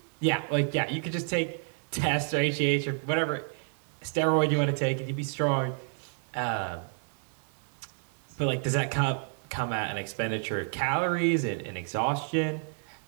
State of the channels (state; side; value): silent; left; 58 dB below the other